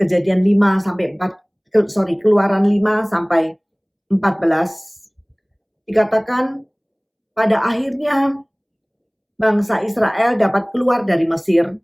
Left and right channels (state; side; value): identical; both; correlation 1.00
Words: 5 sampai 4, Keluaran 5 sampai 14, dikatakan pada akhirnya bangsa Israel dapat keluar dari Mesir,